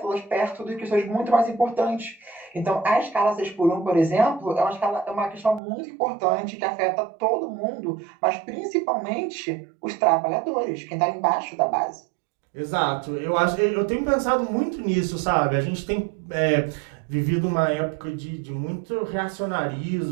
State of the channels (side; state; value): left; drops out; at 5.6 s